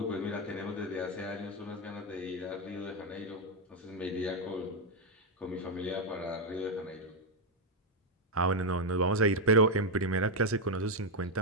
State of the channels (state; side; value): normal; both; correlation 0.02